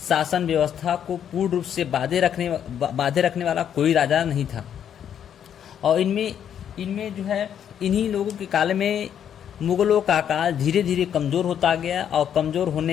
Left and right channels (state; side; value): quieter; right; 9.1 dB